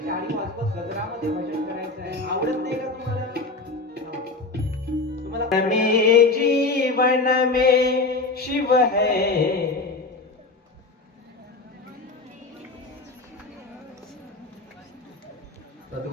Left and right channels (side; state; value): right; quieter; 3.5 dB